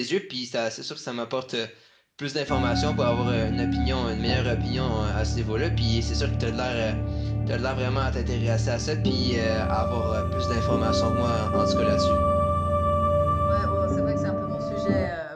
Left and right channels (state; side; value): identical; both; correlation 1.00